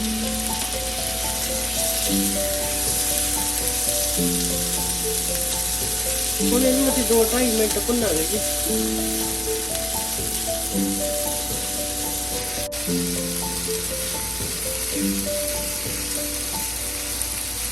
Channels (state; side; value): normal; both; correlation 0.95